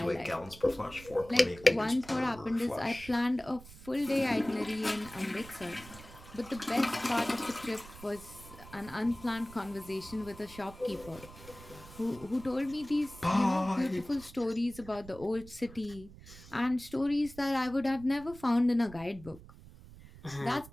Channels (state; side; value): noise; right; rumble, 18 dB below the sound